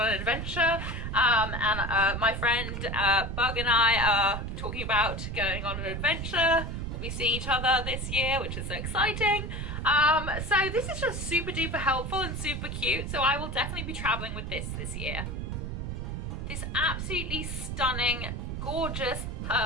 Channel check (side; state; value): right; noise; rumble, 4 dB below the sound